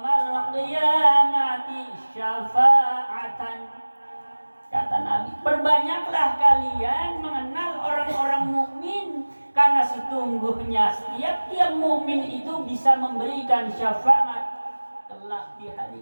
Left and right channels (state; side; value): inverted; both; correlation -1.00